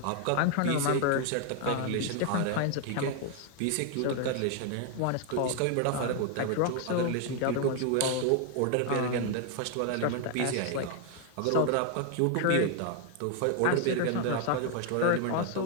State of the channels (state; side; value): different; both; correlation 0.00